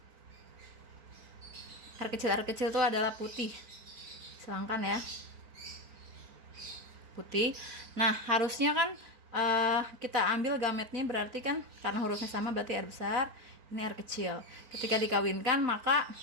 Air kecil itu adalah putih. Silangkan ya. Putih. Nah, harusnya kan kita ambil gametnya, berarti kan karena hurufnya sama berarti air besar, ini air kecil. Ketika dikawinkan, maka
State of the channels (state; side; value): late; left; 4.4 ms